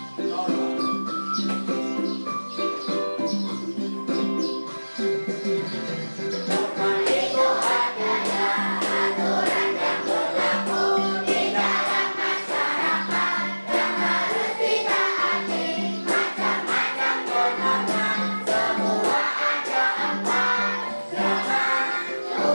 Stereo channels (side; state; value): both; inverted; correlation -1.00